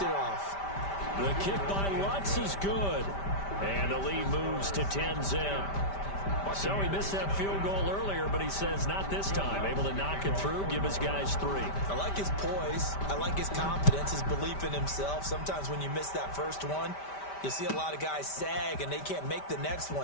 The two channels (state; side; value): late; right; 5.1 ms